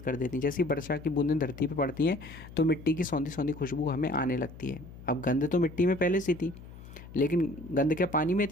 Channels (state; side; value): noise; left; hum, 16 dB below the sound